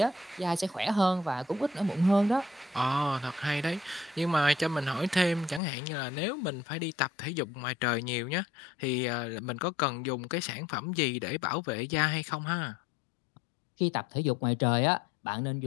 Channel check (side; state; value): right; drops out; at 5.6 s